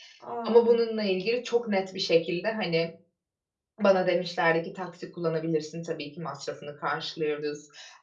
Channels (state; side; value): identical; both; correlation 1.00